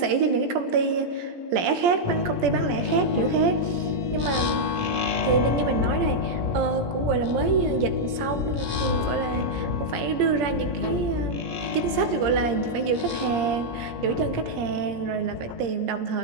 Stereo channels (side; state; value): left; late; 17 ms